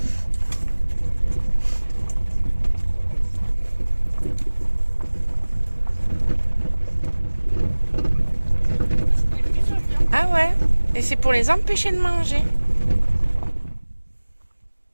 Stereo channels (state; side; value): inverted; both; correlation -1.00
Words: Ah ouais, et c'est pour les empêcher de manger.